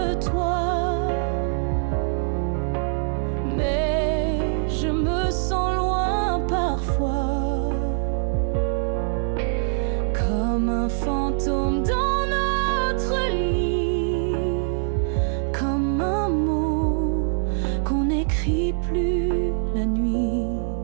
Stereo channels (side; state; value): left; silent; 63 dB below the other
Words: toi, mais je me sens loin parfois, comme un fantôme dans notre lit, comme un mot qu'on écrit crie plus la nuit.